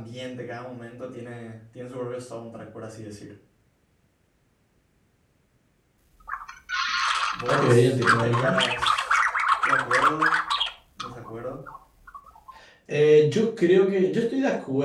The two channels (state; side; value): identical; both; correlation 1.00